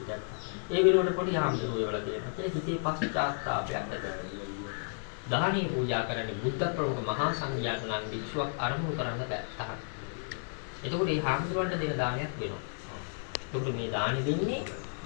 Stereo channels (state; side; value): silent; right; 56 dB below the other